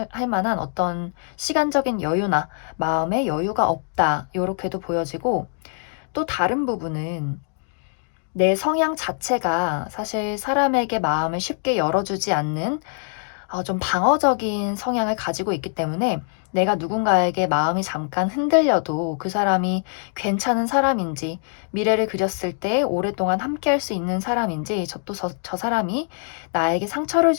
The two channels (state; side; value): silent; right; 58 dB below the other